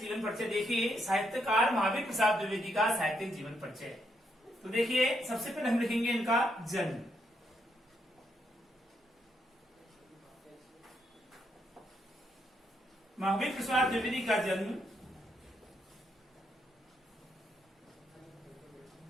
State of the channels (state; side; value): normal; both; correlation 0.77